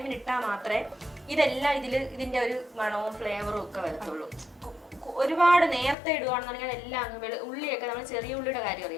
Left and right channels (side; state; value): right; drops out; at 6.0 s